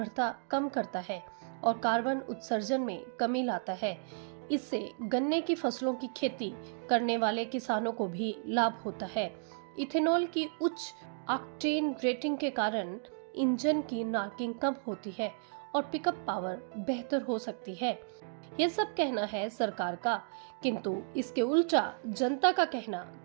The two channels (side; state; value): left; silent; digital silence